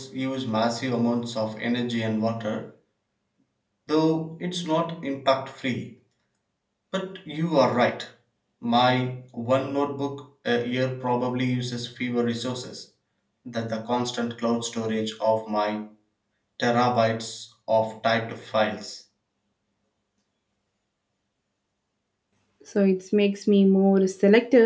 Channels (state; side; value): identical; both; correlation 1.00